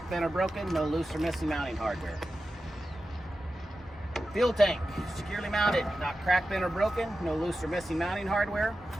bent, or broken, no loose or missing mounting hardware. Fuel tank, securely mounted, not cracked, bent, or broken, no loose or missing mounting hardware.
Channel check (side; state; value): both; normal; correlation 0.92